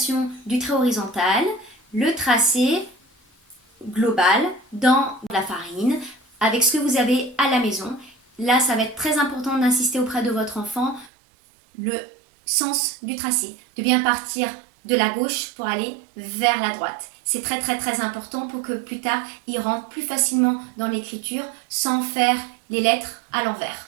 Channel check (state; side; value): drops out; left; at 11.1 s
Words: du trait horizontal, le tracé global dans la farine, avec ce que vous avez à la maison. Là, ça va être très important d'insister auprès de votre enfant le sens du tracé, de bien partir de la gauche pour aller vers la droite. C'est très important pour que plus tard, il rentre plus facilement dans l'écriture sans faire les lettres à l'envers.